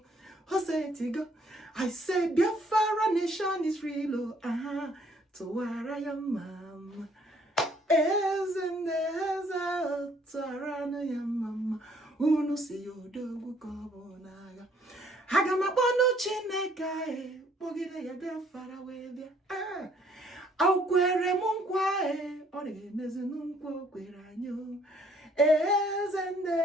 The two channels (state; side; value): normal; both; correlation 0.63